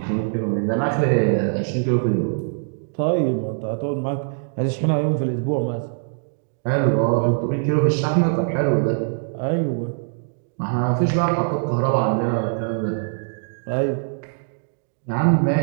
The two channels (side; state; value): left; silent; digital silence